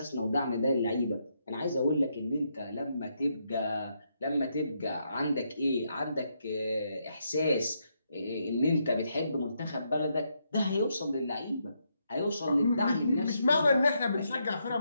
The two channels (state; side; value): inverted; both; correlation -0.79